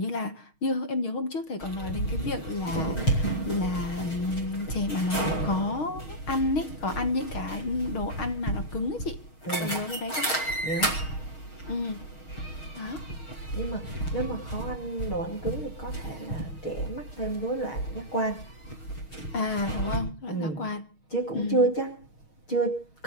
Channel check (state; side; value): late; right; 6.4 ms